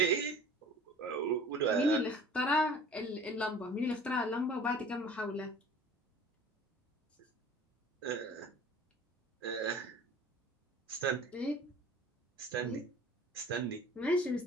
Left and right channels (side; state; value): both; normal; correlation 0.45